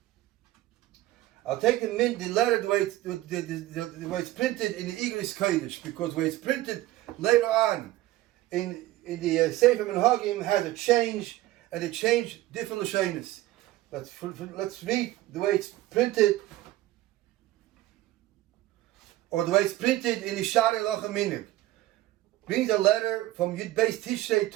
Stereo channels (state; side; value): quieter; left; 16.2 dB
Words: I'll take the letter the way it's printed in the Igris Kodesh, because the way it's printed later on in the Sefer Minhagim has a change, and it changed different lashonos. Let's read the way it's printed, or the way it's printed in the Shari Lachaminik. Brings a letter from Yud Beis Tishrei